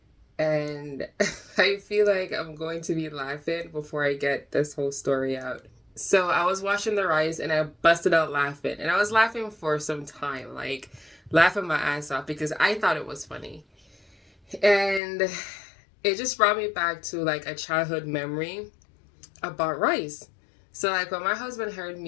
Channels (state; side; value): drops out; right; at 15.0 s